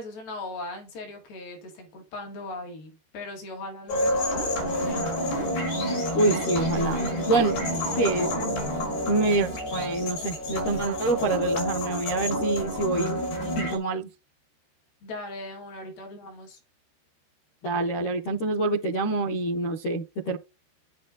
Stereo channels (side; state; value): right; late; 13 ms